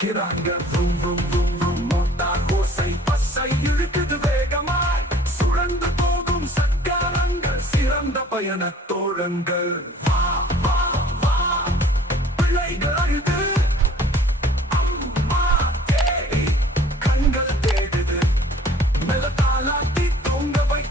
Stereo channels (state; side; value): normal; both; correlation 0.52